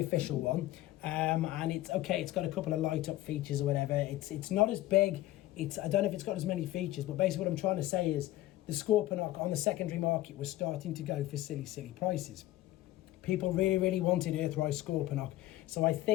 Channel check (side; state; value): right; quieter; 15.7 dB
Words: one, and it's okay, it's got a couple of light up features or whatever. It's not as big, I don't know if it's got as many features, but basically what I'm trying to say is the Scorponok on the secondary market was starting to go for silly prices. People really wanted Earthrise Scorponok, so I